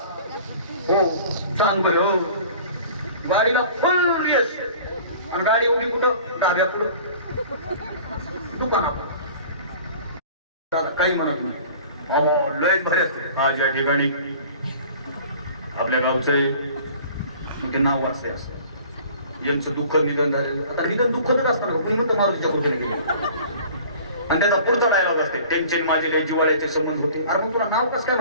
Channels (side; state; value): both; inverted; correlation -0.46